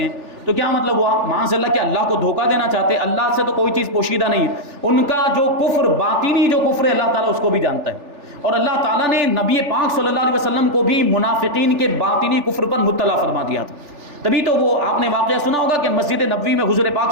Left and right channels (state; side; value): late; left; 3.4 ms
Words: ہیں، تو کیا مطلب ہوا؟ معاذ اللہ کہ اللہ کو دھوکہ دینا چاہتے ہیں، اللہ سے تو کوئی چیز پوشیدہ نہیں، ان کا جو کفر باطنی جو کفر ہے اللہ تعالیٰ اس کو بھی جانتا ہے، اور اللہ تعالیٰ نے نبی پاک صلی اللہ علیہ وسلم کو بھی منافقین کے باطنی کفر پر مطلع فرما دیا تھا۔ تبھی تو وہ آپ نے واقعہ سنا ہوگا کہ مسجد نبوی میں حضور پاک